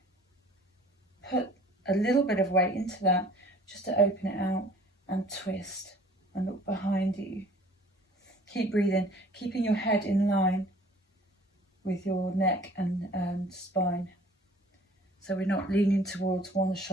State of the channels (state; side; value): normal; both; correlation 0.51